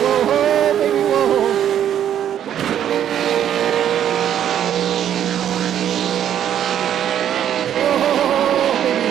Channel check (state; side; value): quieter; left; 10.1 dB